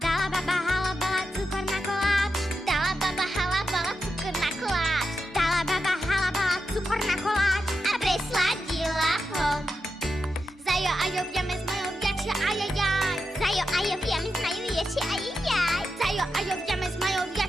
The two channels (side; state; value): both; normal; correlation 0.88